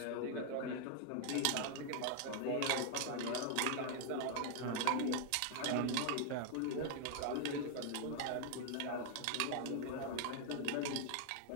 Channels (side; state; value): both; different; correlation 0.00